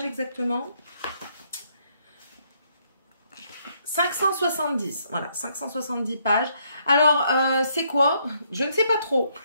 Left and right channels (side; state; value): both; inverted; correlation -0.72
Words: exactement? 570. Voilà, 570 pages. Alors, c'est quoi? Je ne sais pas trop.